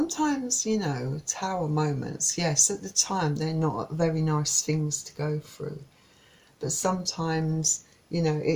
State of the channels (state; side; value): identical; both; correlation 1.00